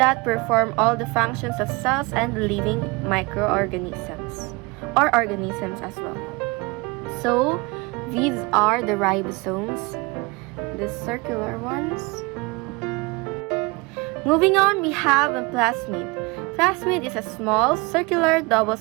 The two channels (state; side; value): quieter; left; 25.8 dB